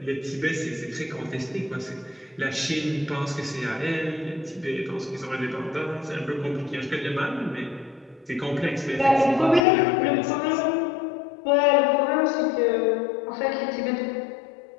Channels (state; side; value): drops out; right; at 9.6 s